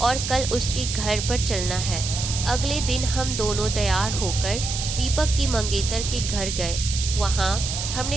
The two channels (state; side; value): noise; right; hiss, 4 dB below the sound